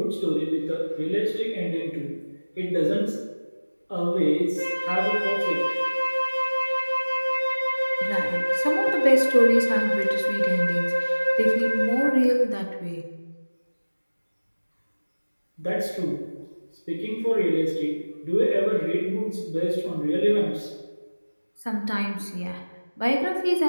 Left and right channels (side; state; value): both; inverted; correlation -1.00